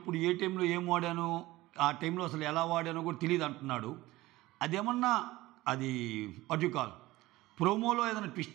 అప్పుడు ఏ టైంలో ఏం వాడాను, ఆ టైంలో అసలు ఎలా వాడానో కూడా తెలియదు అంటున్నాడు. అదేమన్నా అది వాట్ యు కాల్ ప్రోమోలో ఏదైనా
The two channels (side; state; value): left; quieter; 18.3 dB